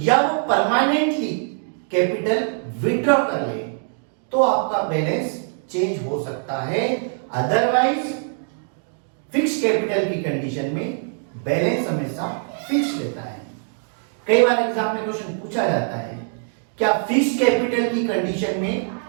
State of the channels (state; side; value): silent; left; digital silence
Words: वो परमानेंटली कैपिटल विड्रॉ कर ले तो आपका बैलेंस चेंज हो सकता है. अदरवाइज फिक्स कैपिटल की कंडीशन में बैलेंस हमेशा फिक्स रहता है. कई बार एग्जाम में क्वेश्चन पूछा जाता है क्या फिक्स कैपिटल की कंडीशन में